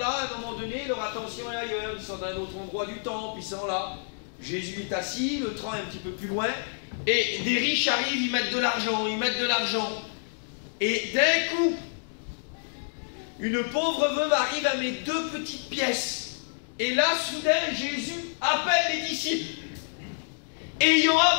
à un moment donné, leur attention est ailleurs. Ils sont dans un autre endroit du temple, ils sont là. Jésus est assis, le train est un petit peu plus loin, et des riches arrivent, ils mettent de l'argent, Et d'un coup, une pauvre veuve arrive à mes 2 petites pièces. Et là, soudain, Jésus appelle les disciples. Et ayant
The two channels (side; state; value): right; silent; digital silence